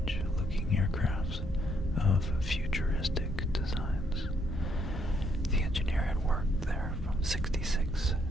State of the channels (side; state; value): both; normal; correlation 0.72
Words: aircrafts of futuristic designs. The engineer had worked there from 66